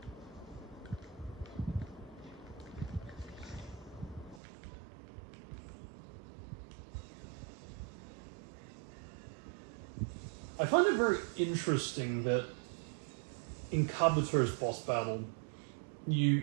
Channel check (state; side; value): drops out; left; at 4.4 s